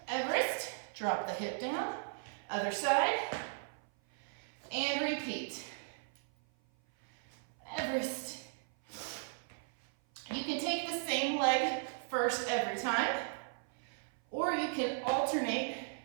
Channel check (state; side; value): silent; left; 53 dB below the other